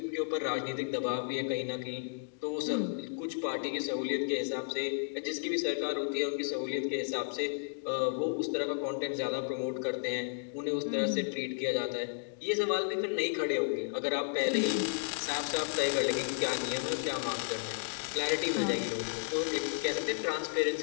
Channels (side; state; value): right; silent; digital silence